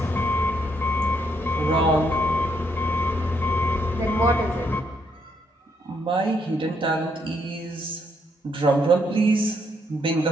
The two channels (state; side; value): normal; both; correlation 0.74